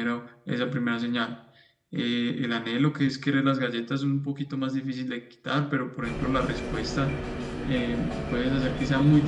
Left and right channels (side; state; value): both; identical; correlation 1.00